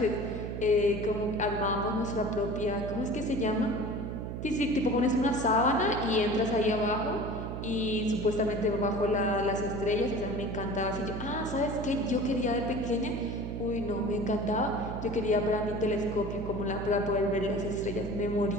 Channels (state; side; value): noise; right; hum, 6 dB below the sound